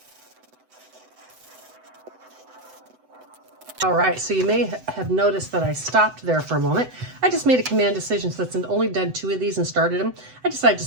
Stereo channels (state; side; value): late; left; 7.9 ms